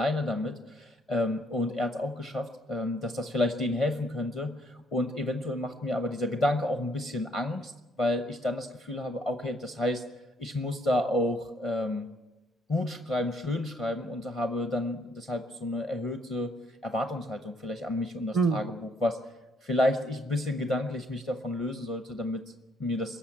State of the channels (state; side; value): normal; both; correlation 0.68